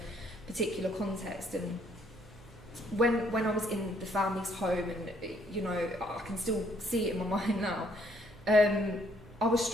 particular context, and when I was in the family's home, and you know, I can still see it in my mind now, I was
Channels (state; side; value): noise; right; hum, 22 dB below the sound